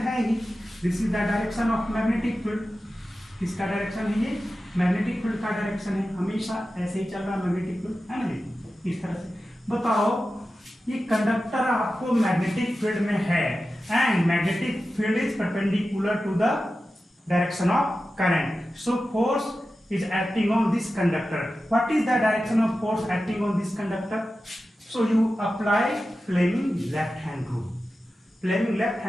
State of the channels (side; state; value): both; normal; correlation 0.93